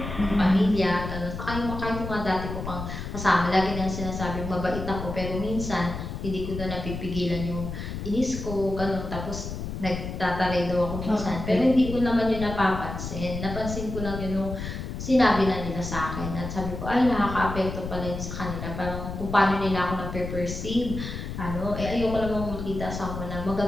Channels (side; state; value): left; noise; rumble, 6 dB below the sound